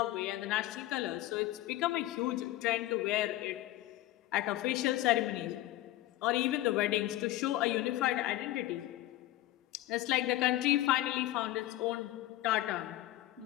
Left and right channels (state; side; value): quieter; right; 15.9 dB